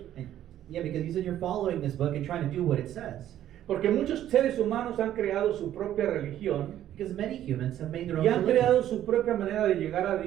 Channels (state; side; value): quieter; left; 11.9 dB